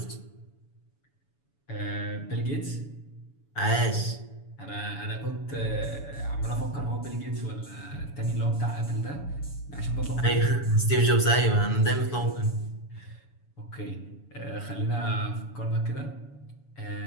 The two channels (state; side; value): late; right; 7.0 ms